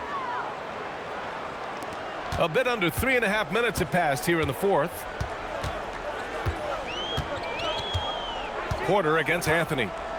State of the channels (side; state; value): both; identical; correlation 1.00